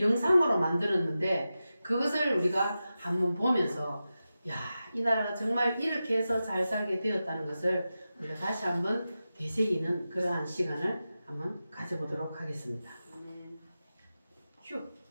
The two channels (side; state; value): both; inverted; correlation -0.93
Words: 영상으로 만들었는데, 그것을 우리가 한번 보면서 이 나라가 정말 이렇게 해서 잘 살게 되었다는 것을 우리가 다시 한번 되새기는 그러한 시간을 한번 가져보도록 하겠습니다. 휴.